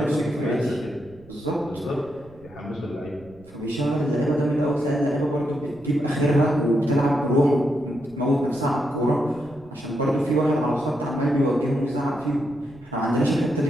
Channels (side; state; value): right; noise; rumble, 24 dB below the sound